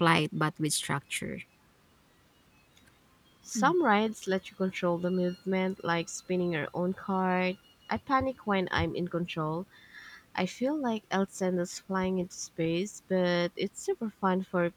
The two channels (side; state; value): both; identical; correlation 1.00